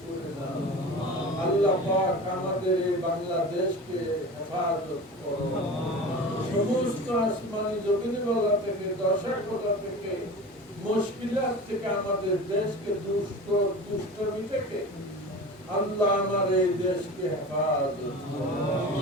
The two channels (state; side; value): normal; both; correlation 0.34